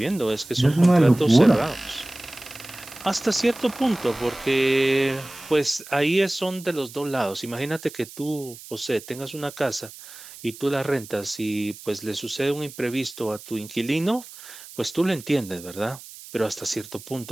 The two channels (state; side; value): noise; right; hiss, 16 dB below the sound